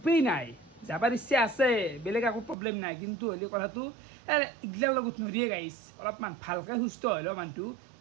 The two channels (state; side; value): drops out; left; at 2.6 s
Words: নাই যাবাৰ ইচ্ছা আছে বেলেগ একো প্ৰব্লেম নাই কিন্তু হ'লে কথাটো এইগিলাৰ লগত নৰিয়ে গাইছ অলপমান ভালকৈ সুস্থ হ'লেও মানুহটো